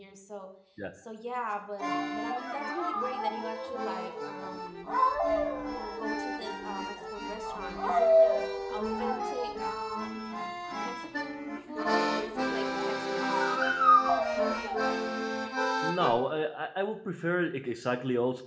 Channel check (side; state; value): both; identical; correlation 1.00